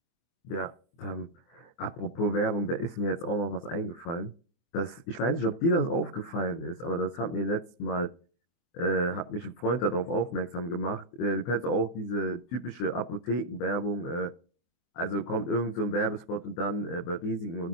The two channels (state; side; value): late; right; 24 ms